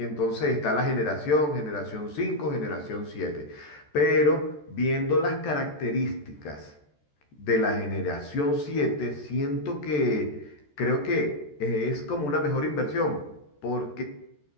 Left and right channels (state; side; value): late; right; 13 ms